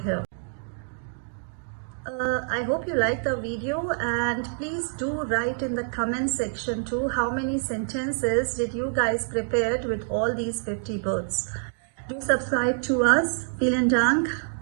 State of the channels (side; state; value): left; silent; digital silence